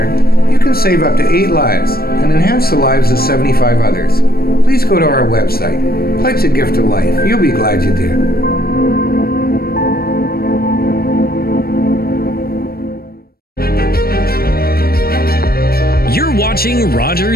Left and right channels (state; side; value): late; right; 0.44 ms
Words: you can save up to 8 lives and enhance the lives of 75 others. Please go to our website. Pledge a gift of life. You'll be glad you did. You're watching